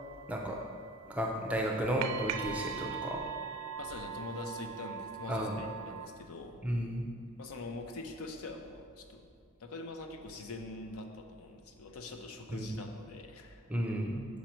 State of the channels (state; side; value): normal; both; correlation 0.45